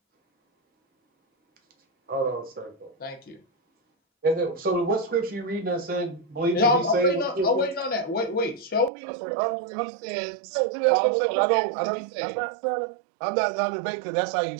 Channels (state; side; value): drops out; left; at 8.9 s